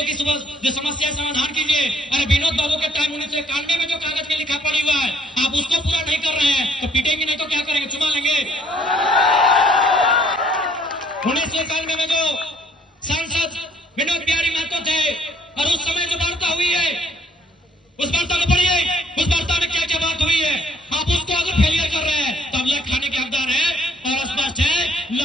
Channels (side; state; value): both; normal; correlation 0.62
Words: की जो समस्या समाधान कीजिए। अरे विनोद बाबू के टाइम 1991 में जो कागज में लिखा पड़ी हुआ है, आप उसको पूरा नहीं कर रहे हैं तो पीटेंगे, नहीं तो क्या करेंगे? चुमा लेंगे। 1991 में जो सांसद विनोद बिहारी महतो थे और उस समय जो वार्ता हुई है, उस वार्ता को पढ़िए। उस वार्ता में क्या क्या बात हुई है। आप उसको अगर फेलियर कर रहे हैं तो आप लेख खाने के हकदार हैं। और स्पष्ट है